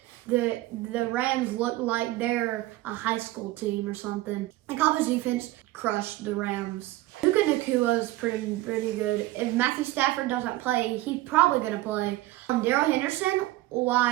The Rams look like they're a high school team or something. The Cowboys defense crushed the Rams. Puka Nacua is pretty good. If Matthew Stafford doesn't play, he's probably going to play. Darrell Henderson,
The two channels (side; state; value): left; quieter; 17.6 dB